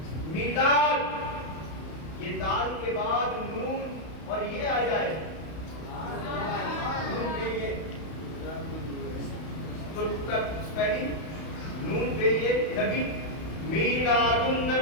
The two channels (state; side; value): late; right; 32 ms